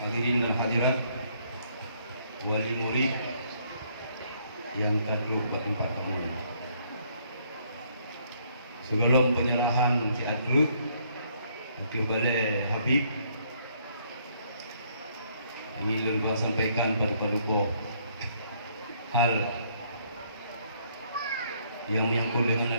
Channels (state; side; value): inverted; both; correlation -0.67